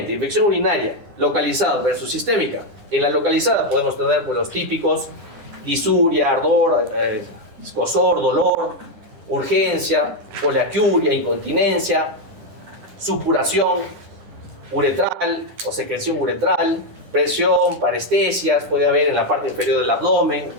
infección urinaria localizada versus sistémica. En la localizada podemos tener pues, los típicos disuria, ardor, escozor, dolor, urgencia, poliaquiuria, incontinencia, supuración uretral o secreción uretral, presión, parestesias, puede haber en la parte inferior del abdomen,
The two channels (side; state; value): left; late; 10 ms